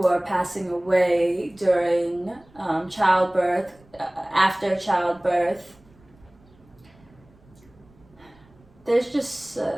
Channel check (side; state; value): right; noise; rumble, 29 dB below the sound